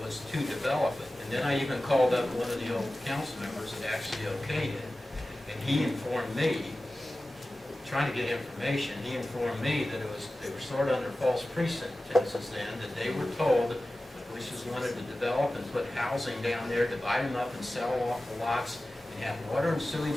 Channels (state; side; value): normal; both; correlation 0.95